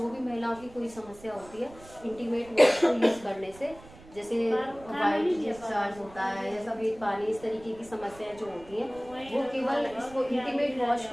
भी महिलाओं की कोई समस्या होती है, इंटीमेट वॉश को यूज़ करने से, जैसे वाइट डिस्चार्ज होता है या सफ़ेद पानी, इस तरीके की समस्याएं जो होती हैं, वो केवल इसको इंटीमेट वॉश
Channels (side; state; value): right; noise; rumble, 21 dB below the sound